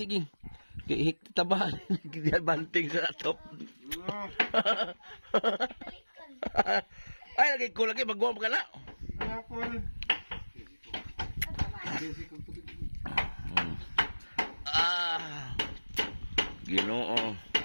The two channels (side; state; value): both; inverted; correlation -1.00